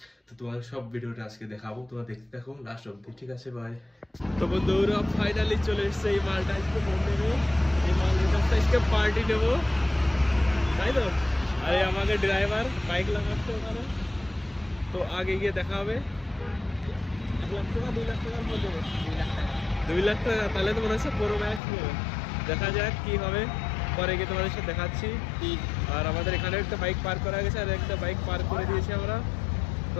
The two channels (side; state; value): right; drops out; at 21.6 s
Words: তো তোমাদের সব ভিডিওটা আজকে দেখাবো, তোমরা দেখতে থাকো লাস্ট অব্দি, ঠিক আছে? ভাই তো বন্ধুরা ফাইনালি চলে এসছে এই মালটা, আজকে ফোন নেবে। এই মালের কাছটা আজকে পার্টি নেবো, তাই তো? আরে আমাকে ড্রাইভার বাইক লাগাচ্ছে ওখানে, তো আগে গিয়ে দেখা হবে। 1 লাখ টাকা 2 লাখ টাকার মধ্যে 2 লাখ টাকা, তাহলে তো মনে হচ্ছে পুরো ম্যাচ নেবে। দেখা যাক কি হবে, পরে গিয়ে তোমাদের সাথে দেখাচ্ছি। আর আমাদের এখানে একটা বাইক পার্ক করা গেছে, আর একটা বাইক পার্ক করে দিয়েছি আমরা, তো